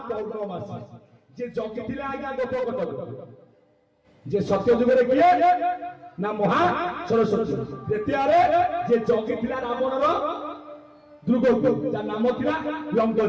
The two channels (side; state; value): both; identical; correlation 1.00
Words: ପୌର୍ଣ୍ଣମାସୀ, ଯେ ଜଗିଥିଲା ଆଜ୍ଞା ଗୋପକଟକ। ଯେ ସତ୍ୟ ଯୁଗରେ କିଏ ନା ମହା ସରସ୍ୱତୀ। ଦ୍ୱିତୀୟରେ ଯେ ଜଗିଥିଲା ରାବଣର ଦୁର୍ଗକୁ, ଯାହା ନାମ ଥିଲା